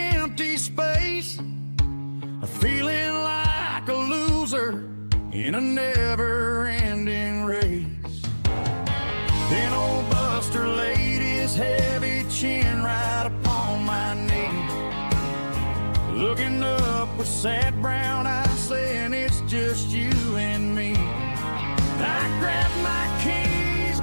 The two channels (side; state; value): both; inverted; correlation -1.00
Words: empty space, feeling like a loser in a never-ending race. Then old Buster laid his heavy chin right upon my knee, looking up with sad brown eyes, saying it's just you and me. I grabbed my keys,